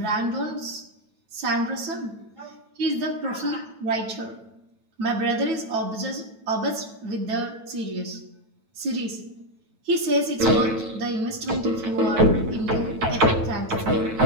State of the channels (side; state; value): left; late; 9.1 ms